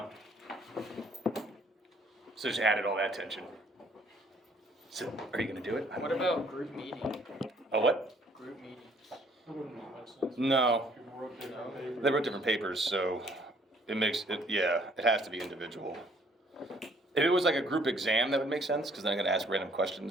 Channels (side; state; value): both; normal; correlation 0.62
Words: So just added all that tension. So, are you going to do it? What about group meeting? A what? Group meeting. No. They wrote different papers, so it makes it, yeah, it has to be individual. If it was like a group exam, that would make sense, because then I'm going to ask random